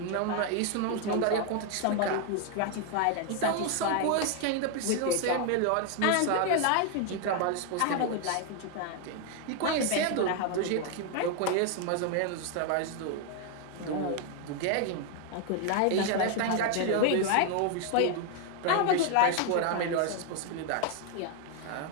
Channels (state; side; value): different; both; correlation 0.00